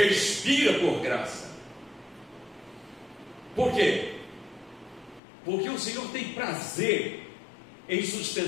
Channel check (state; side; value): drops out; right; at 5.2 s